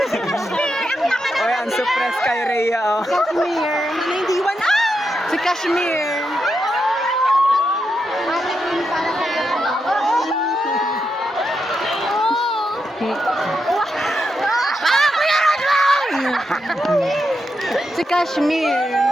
Oy, ang suppress kay Rhea, oh. Kashmir! Ano yung Diwan? Si Kashmir! Si Kashmir!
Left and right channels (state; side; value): normal; both; correlation 0.85